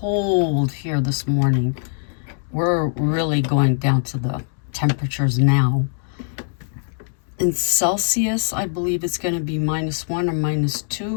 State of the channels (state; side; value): silent; right; digital silence